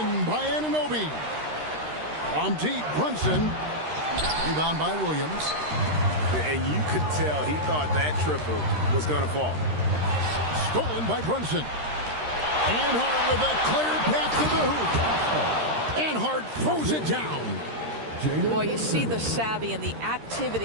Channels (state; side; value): late; left; 13 ms